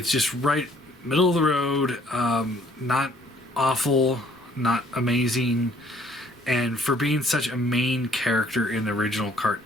just right middle of the road, not awful, not amazing, and for being such a main character in the original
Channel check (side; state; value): both; normal; correlation 0.61